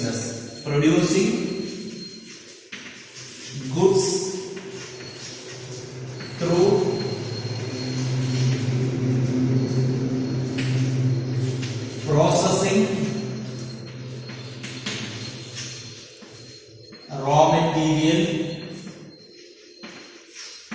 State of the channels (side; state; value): both; identical; correlation 1.00